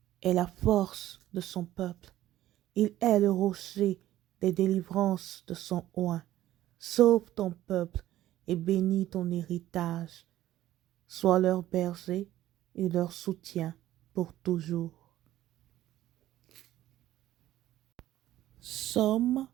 est la force de son peuple. Il est le rocher des délivrances de son oint. Sauve ton peuple et bénis ton héritage. Sois leur berger et leur soutien pour toujours. Psaume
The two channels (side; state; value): left; quieter; 14.0 dB